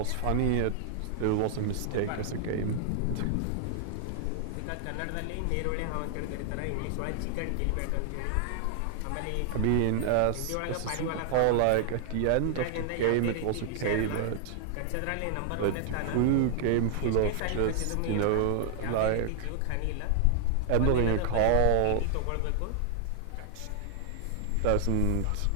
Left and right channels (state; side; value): different; both; correlation -0.01